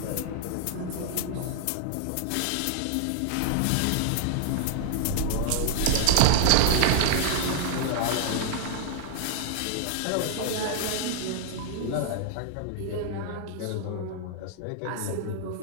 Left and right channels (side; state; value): both; different; correlation -0.01